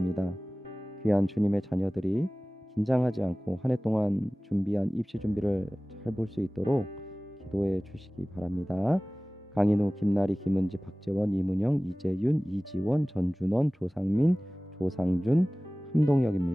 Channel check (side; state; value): both; normal; correlation 0.98